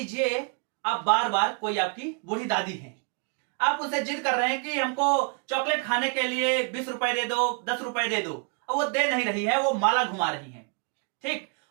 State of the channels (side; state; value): left; quieter; 37.1 dB